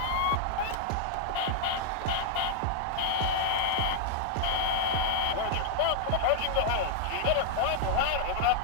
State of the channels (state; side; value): different; both; correlation 0.00